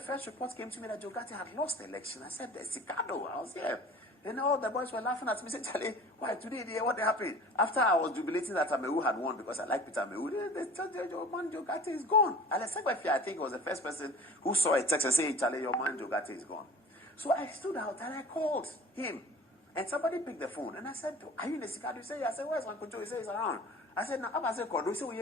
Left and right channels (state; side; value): normal; both; correlation 0.42